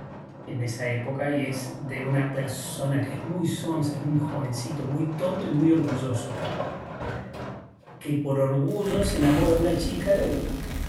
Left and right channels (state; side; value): identical; both; correlation 1.00